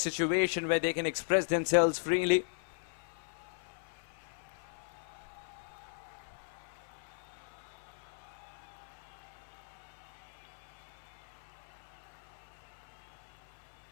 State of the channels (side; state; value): right; silent; 53 dB below the other